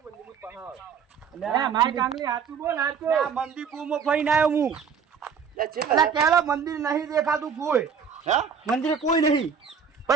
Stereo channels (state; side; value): quieter; left; 6.6 dB